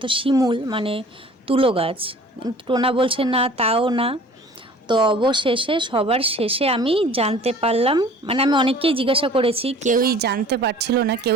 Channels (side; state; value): both; normal; correlation 0.48